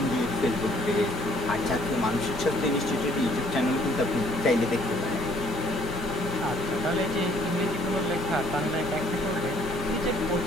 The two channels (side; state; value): both; normal; correlation 0.62